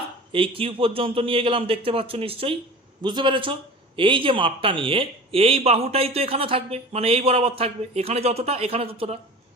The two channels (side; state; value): both; normal; correlation 0.37